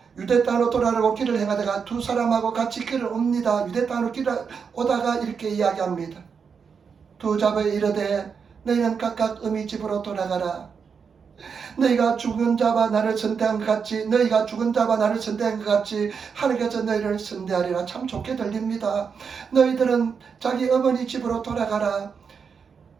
유대 땅으로 돌아가려고 길을 행하다가 두 사람하고 같이 길을 옵니다. 유대 땅으로 길을 오다가 이렇게 이야기합니다. 두 자부에 이르되 너희는 각각 어미 집으로 돌아가라. 너희가 죽은 자와 나를 선대한 것 같이 하나님께서 너희를 선대하리라. 참 좋게 들립니다. 너희들은 자기 어머니 집으로 돌아가라.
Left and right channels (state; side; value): quieter; left; 6.1 dB